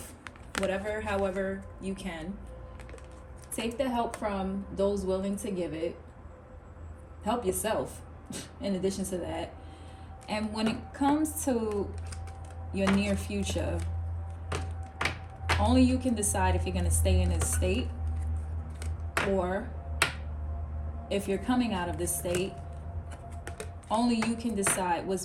however you can. Take the help from those willing to give it. Help yourself in addition to that. And when it comes to your near future, only you can decide if you're going to stay in this state or if you're coming out of this state. Only you can decide what's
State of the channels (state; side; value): identical; both; correlation 1.00